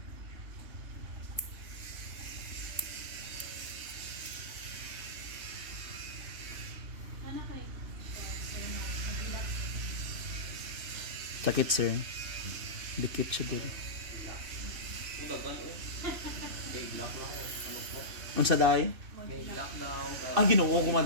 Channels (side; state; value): left; late; 2.6 ms